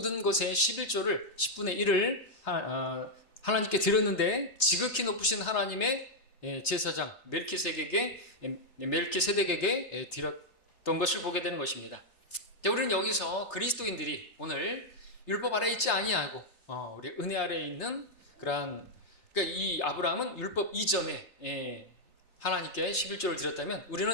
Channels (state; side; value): late; right; 3.3 ms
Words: 것의 11조를 10분의 1을 하나님께 드렸는데 지극히 높으신 하나님의 제사장 멜키세덱에게 드렸던 것을 보게 되는 것입니다. 우리는 여기서 그리스도인들이 오늘 율법 아래 있지 아니하고 우리 은혜 아래에 있는 그러니까 이 아브라함은 율법 이전에 하나님께 11조를 드렸다면